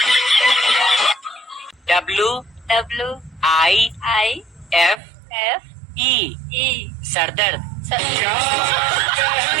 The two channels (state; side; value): drops out; left; at 5.0 s